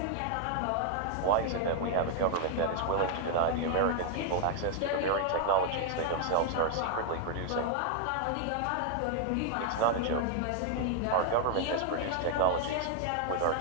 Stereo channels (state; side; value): different; both; correlation 0.00